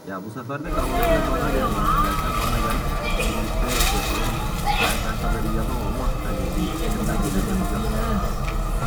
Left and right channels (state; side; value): identical; both; correlation 1.00